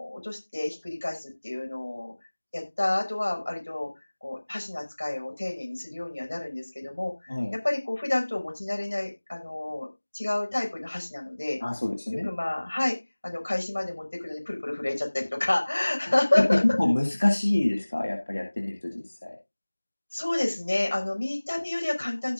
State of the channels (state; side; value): inverted; both; correlation -1.00